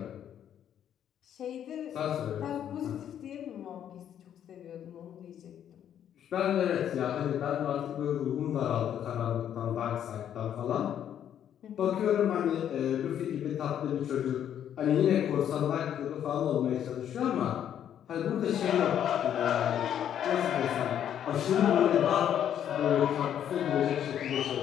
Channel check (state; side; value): quieter; right; 9.8 dB